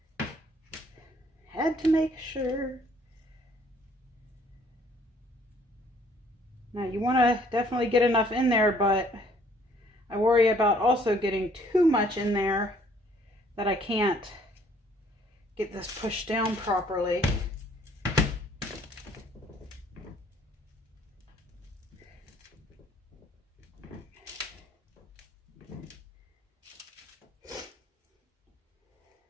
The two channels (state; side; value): normal; both; correlation 0.61